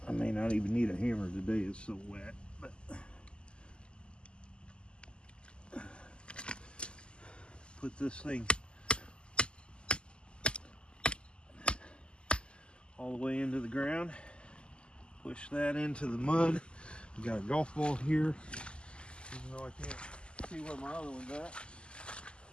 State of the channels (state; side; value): late; right; 0.050 ms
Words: I may not even need a hammer today, it's so wet. But put this thing all the way into the ground, push that into the mud. We got a golf ball here, even though I can't see where my other one's at.